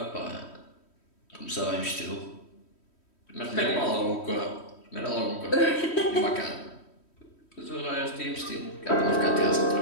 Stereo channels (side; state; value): right; late; 3.1 ms